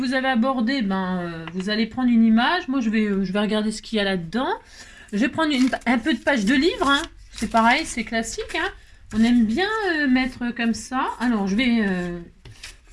avez abordé, vous allez prendre une image. Moi, je vais regarder ce qu'il y a là-dedans. Je vais prendre un peu de page de livre. Hein. C'est pareil, c'est classique. Hein. On aime bien mettre comme ça. Alors, je vais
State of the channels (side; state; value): both; identical; correlation 1.00